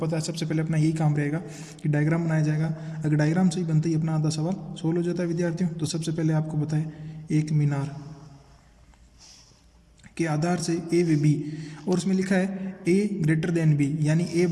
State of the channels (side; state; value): both; identical; correlation 1.00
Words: है सबसे पहले अपना यही काम रहेगा कि डायग्राम बनाया जाएगा। अगर डायग्राम सही बनता ही अपना आधा सवाल सोल्व हो जाता है विद्यार्थियों। तो सबसे पहले आपको पता है एक मीनार के आधार से ए व बी, और उसमें लिखा है ए ग्रेटर देन बी, यानी ए